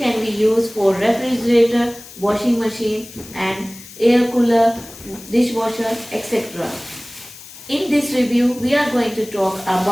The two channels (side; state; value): left; noise; hiss, 17 dB below the sound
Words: be used for refrigerator, washing machine and air cooler, dishwasher, etc. In this review, we are going to talk